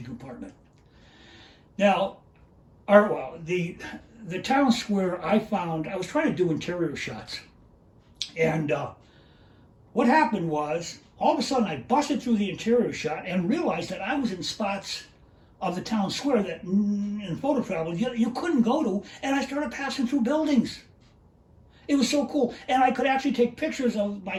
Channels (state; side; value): identical; both; correlation 1.00